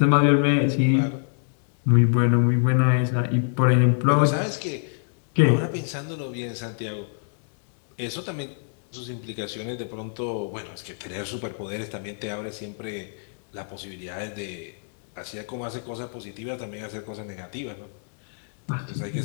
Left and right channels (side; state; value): right; silent; digital silence